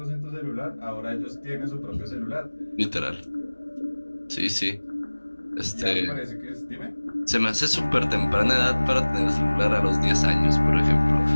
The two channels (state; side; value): inverted; both; correlation -1.00